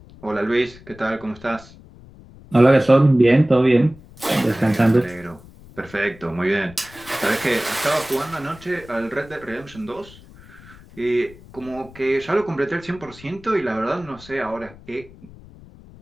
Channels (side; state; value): left; noise; rumble, 21 dB below the sound